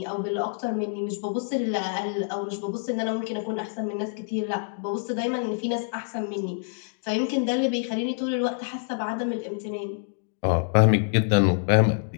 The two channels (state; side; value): silent; right; digital silence